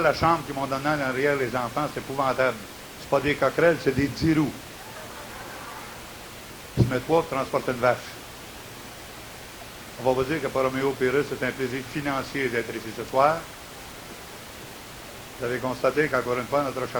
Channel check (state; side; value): identical; both; correlation 1.00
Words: la chambre qu'ils m'ont donnée en arrière, les enfants, c'est épouvantable. C'est pas des coquerelles, c'est des 10 roues. Ils se mettent trois pour transporter une vache. On va vous dire que pour Roméo Pérus, c'est un plaisir financier d'être ici ce soir. Vous avez constaté qu'encore une fois, notre